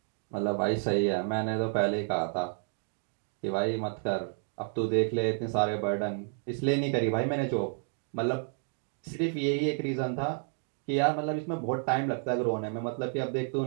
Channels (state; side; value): silent; left; 57 dB below the other